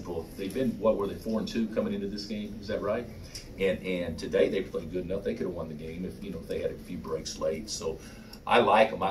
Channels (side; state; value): both; identical; correlation 1.00